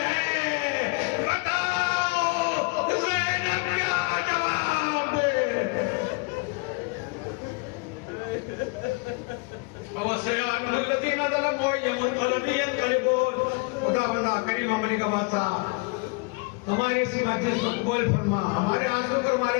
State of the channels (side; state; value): right; quieter; 30.4 dB